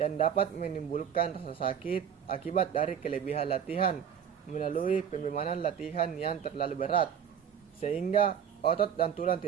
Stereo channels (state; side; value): quieter; left; 8.2 dB